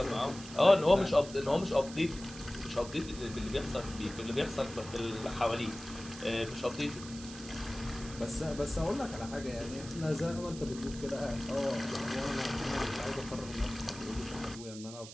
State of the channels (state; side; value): noise; right; hiss, 14 dB below the sound